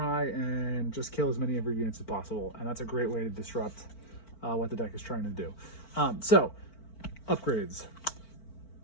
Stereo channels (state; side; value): late; right; 4.5 ms